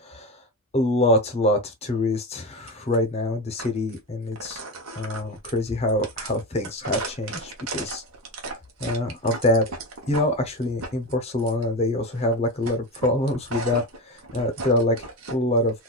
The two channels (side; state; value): both; normal; correlation 0.20